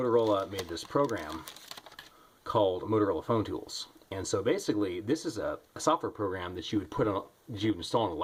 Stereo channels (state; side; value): identical; both; correlation 1.00